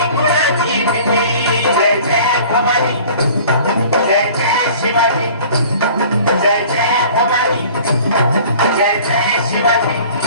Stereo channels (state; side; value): inverted; both; correlation -0.47